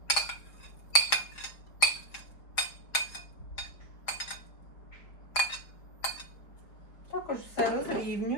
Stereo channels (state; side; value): late; right; 4.8 ms